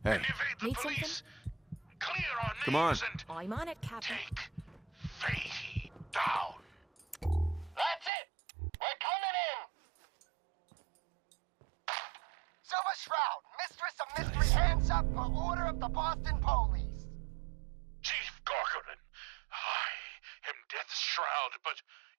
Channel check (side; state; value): left; drops out; at 8.1 s